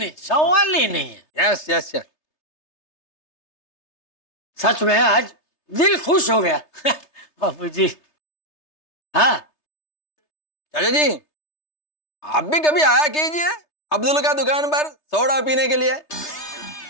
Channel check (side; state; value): right; late; 3.3 ms